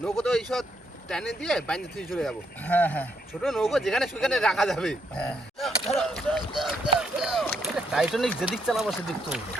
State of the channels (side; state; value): both; normal; correlation 0.75